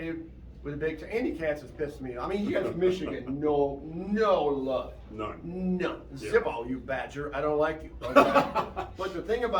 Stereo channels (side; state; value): both; identical; correlation 1.00